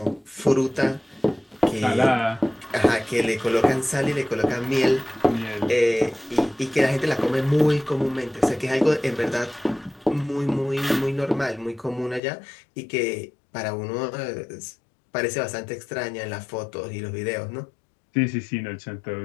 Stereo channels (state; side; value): drops out; right; at 12.2 s